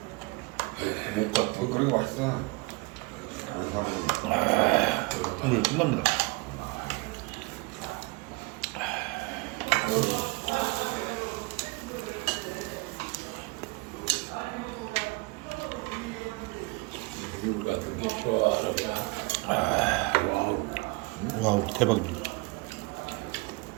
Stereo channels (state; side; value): quieter; left; 25.8 dB